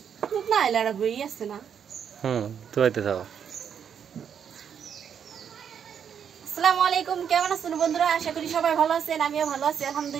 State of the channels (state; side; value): quieter; left; 7.9 dB